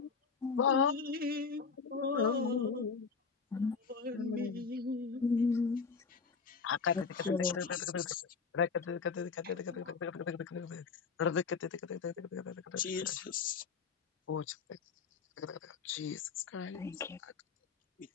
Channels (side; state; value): right; quieter; 5.3 dB